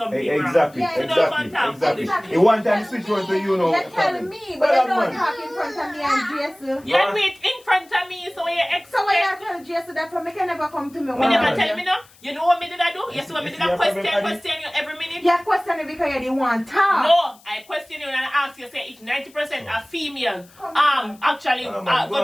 wrong. Exactly, Yeah, exactly. Exactly. You want time to switch on to you know. You're telling me, but you don't talk in front of me and Jason. You do it in front of me, so you expect. So why you tell Jason that from me can never come to me? Me one never day? tell me no. You know what me did I do? You see what me did I You see your problem, question you every minute? You question it because you didn't want talk. No, I question you and I ask you, say if 90% are female, actually Come on,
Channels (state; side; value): noise; left; hiss, 27 dB below the sound